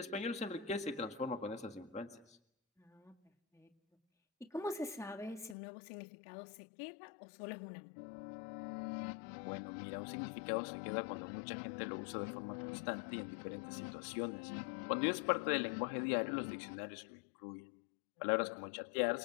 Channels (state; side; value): drops out; right; at 5.6 s